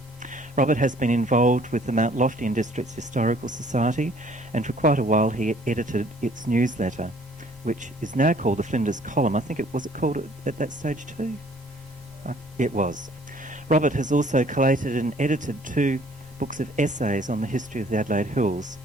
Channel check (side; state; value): both; normal; correlation 0.57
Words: Robert has been involved with the Mount Lofty District's Historical Society, and for quite a while he edited its newsletter, which is now called the Flinders Column. I think it was called at that stage too? It was. Robert has also collated and edited 2 books of essays on the history of the Adelaide Hills,